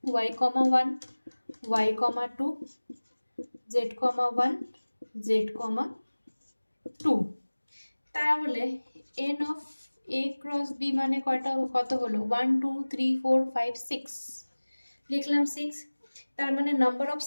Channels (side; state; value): both; inverted; correlation -1.00